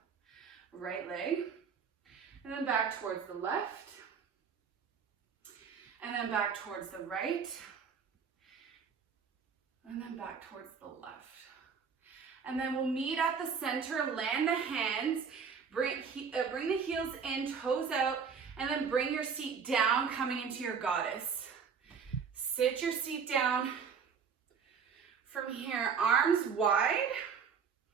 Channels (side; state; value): left; quieter; 6.3 dB